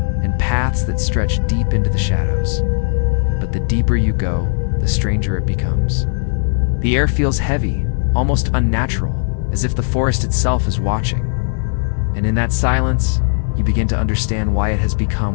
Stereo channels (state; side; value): silent; right; digital silence